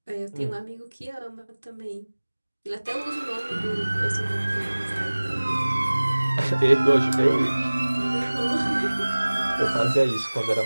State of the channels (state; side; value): inverted; both; correlation -1.00